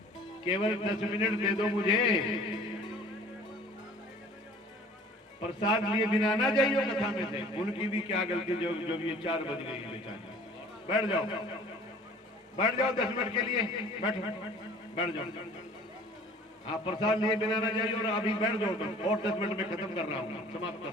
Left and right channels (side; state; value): both; normal; correlation 0.49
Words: केवल 10 मिनट दे दो मुझे, प्रसाद लिए बिना ना जाइयो कथा में से। उनकी भी क्या गलती जो ये 4 बज गई बेचारी। बैठ जाओ, बैठ जाओ 10 मिनट के लिए, बैठो, बैठ जाओ। हाँ, प्रसाद लिए बिना ना जाइए और अभी बैठ जाओ तुम, और 10 मिनट में खत्म कर रहा हूँ, समाप्त कर